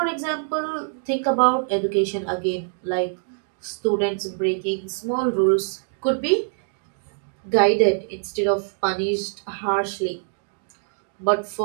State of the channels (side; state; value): left; silent; 63 dB below the other